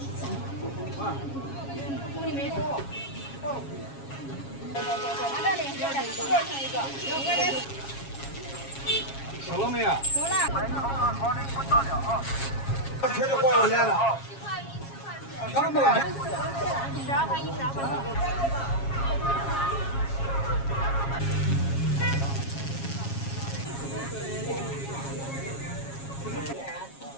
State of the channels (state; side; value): late; right; 7.3 ms